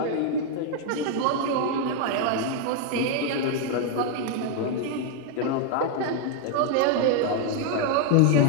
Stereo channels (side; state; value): both; different; correlation 0.00